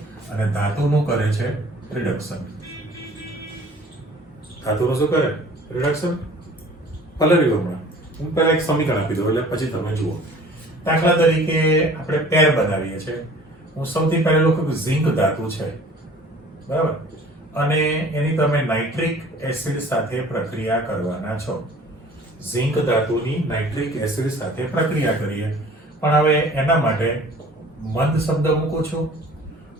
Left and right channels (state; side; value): normal; both; correlation 0.49